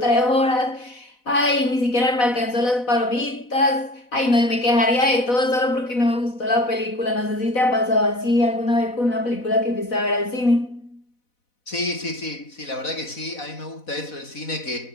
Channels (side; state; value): right; late; 4.1 ms